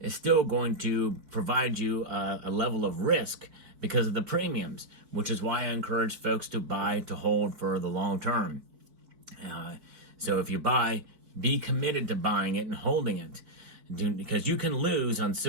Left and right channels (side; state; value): left; late; 4.6 ms